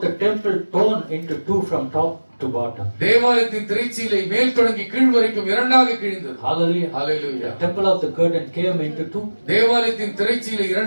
the temple torn into two from top to bottom. தேவாலயத்தின் திரைச்சீலை மேல் தொடங்கி கீழ் வரைக்கும் இரண்டாக கிழிந்தது. Hallelujah. Hallelujah. The temple of the curtain came into two. தேவாலயத்தின் திரைச்சீலை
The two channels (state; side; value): inverted; both; correlation -1.00